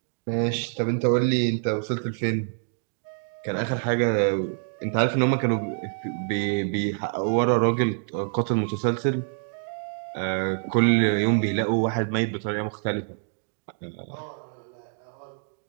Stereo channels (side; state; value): left; silent; digital silence